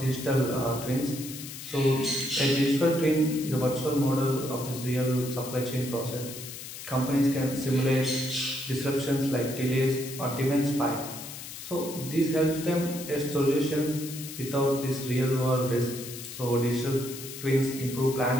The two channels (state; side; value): noise; left; hiss, 11 dB below the sound